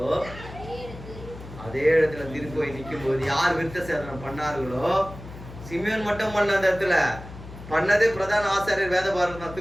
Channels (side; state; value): left; noise; hum, 14 dB below the sound